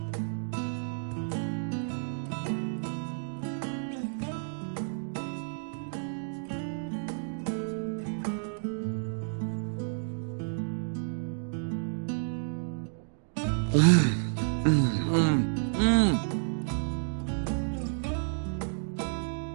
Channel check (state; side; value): silent; left; digital silence